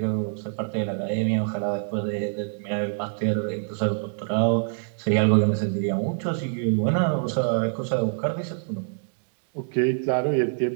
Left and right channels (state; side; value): silent; left; digital silence